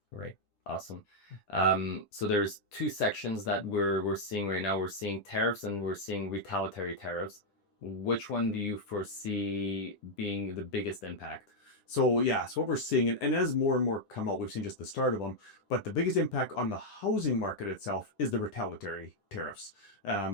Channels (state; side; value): late; right; 10 ms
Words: Right. Awesome. So there's two sections that we're seeing right now. We're seeing tariffs and we're seeing retaliatory tariffs. Which one do you foresee being the biggest impact? So yeah, so what we're seeing, and as more and more come out, we've seen just the start of them. But the biggest impact on the housing market itself is the retaliatory tariffs.